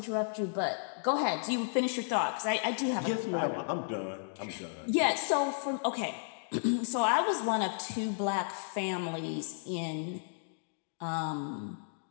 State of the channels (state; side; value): silent; right; digital silence